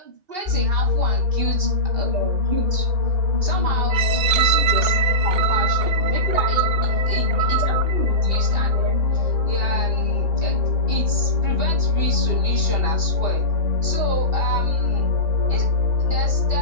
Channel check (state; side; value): late; left; 2.7 ms